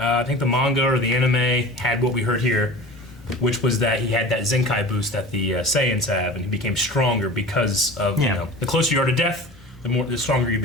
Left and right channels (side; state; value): both; normal; correlation 0.37